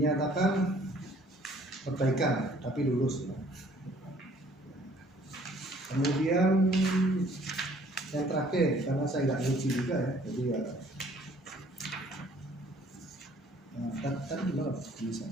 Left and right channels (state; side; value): normal; both; correlation 0.58